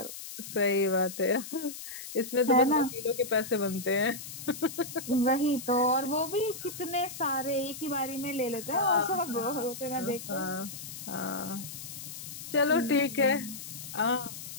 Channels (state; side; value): noise; left; hiss, 11 dB below the sound